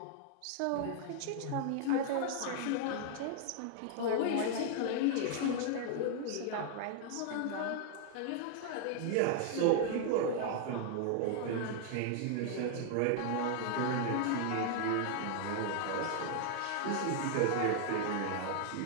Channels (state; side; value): different; both; correlation 0.00